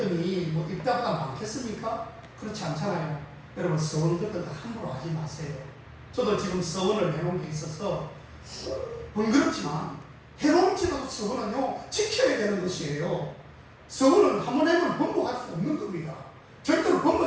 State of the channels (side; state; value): both; identical; correlation 1.00